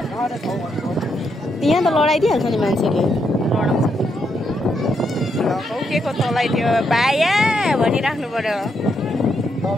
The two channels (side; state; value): both; normal; correlation 0.79